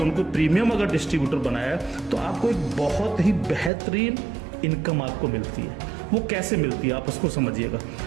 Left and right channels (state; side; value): drops out; left; at 3.7 s